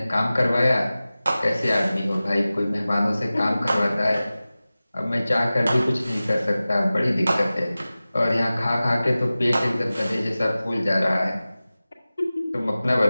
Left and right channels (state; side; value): inverted; both; correlation -0.97